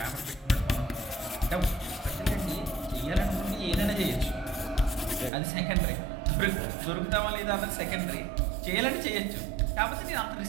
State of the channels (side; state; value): left; drops out; at 5.3 s